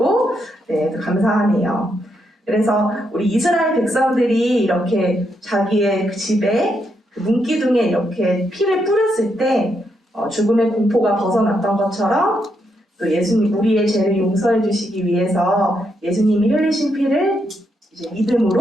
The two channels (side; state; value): both; normal; correlation 0.80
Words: 네, 감사하네요. 그래서 우리 이스라엘 백성들이 이렇게 자기의 그 집에 그 문기둥에 이렇게 피를 뿌렸을 때 죽음의 공포가 벗어났던 것처럼 또 예수님 우리의 죄를 용서해 주시기 위해서 예수님이 흘리신 피를 이제